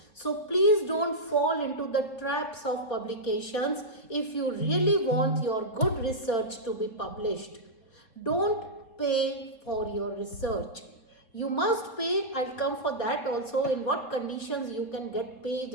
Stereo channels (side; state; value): right; late; 4.2 ms